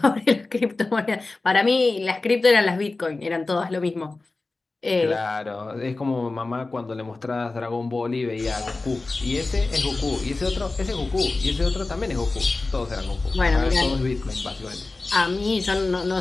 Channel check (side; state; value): right; quieter; 3.4 dB